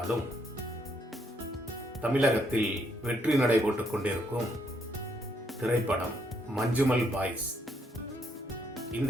தமிழகத்தில் வெற்றி நடைபோட்டுக் கொண்டிருக்கும் திரைப்படம் மஞ்சுமல் பாய்ஸ்.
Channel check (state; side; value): normal; both; correlation 0.74